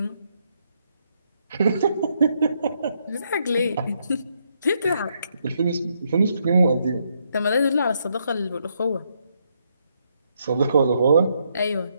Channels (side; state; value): both; inverted; correlation -0.76